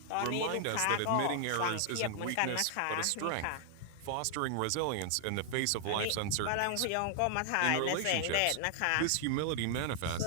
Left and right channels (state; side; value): different; both; correlation 0.00